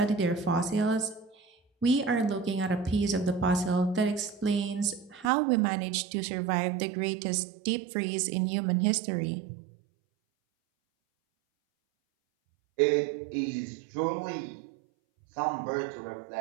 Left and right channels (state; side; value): drops out; left; at 5.3 s